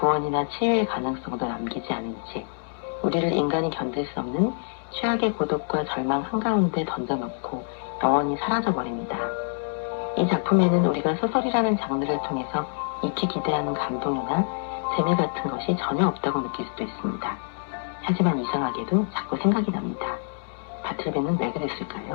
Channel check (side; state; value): right; silent; 61 dB below the other